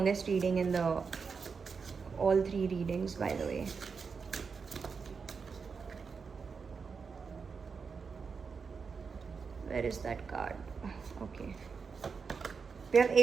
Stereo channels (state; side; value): quieter; left; 5.4 dB